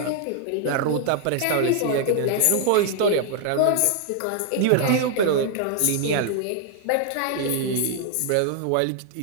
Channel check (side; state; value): both; different; correlation 0.00